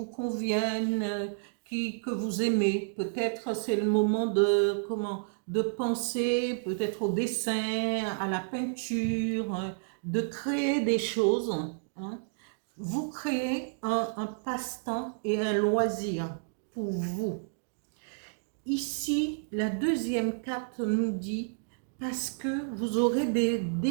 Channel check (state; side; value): silent; left; digital silence